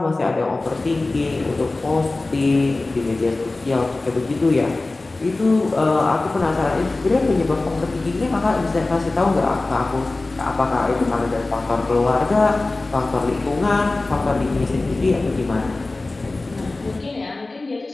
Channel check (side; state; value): right; quieter; 3.2 dB